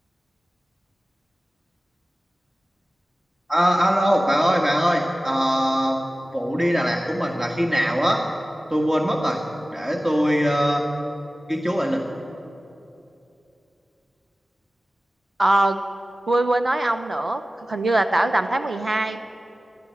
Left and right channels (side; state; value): both; normal; correlation 0.97